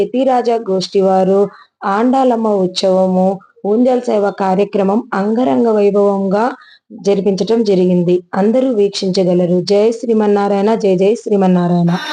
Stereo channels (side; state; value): both; identical; correlation 1.00